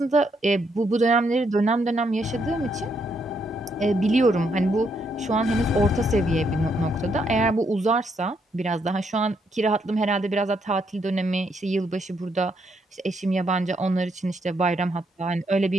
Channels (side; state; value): both; normal; correlation 0.75